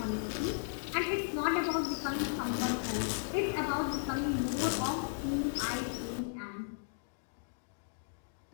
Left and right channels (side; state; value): right; silent; digital silence